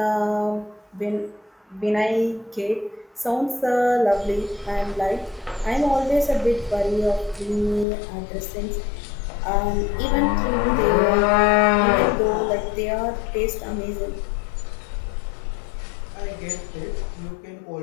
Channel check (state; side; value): drops out; right; at 7.9 s